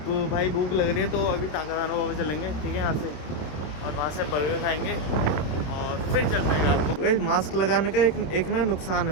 भाई भूख लग रही है तो अभी ताकादाना बाबा चलेंगे, ठीक है, यहाँ से, और वहाँ से बर्गर खाएंगे और फिर चलते हैं आपको। भाई मास्क लगाने का एक ना नुकसान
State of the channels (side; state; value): right; late; 27 ms